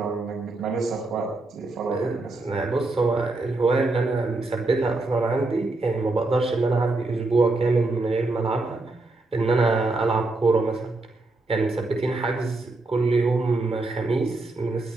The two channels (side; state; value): left; quieter; 3.1 dB